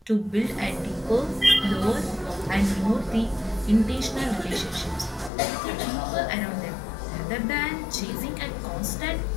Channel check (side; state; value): right; drops out; at 5.3 s